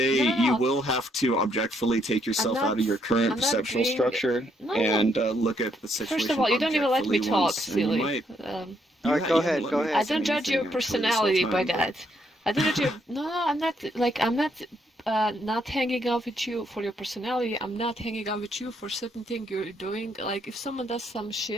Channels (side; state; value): both; normal; correlation 0.73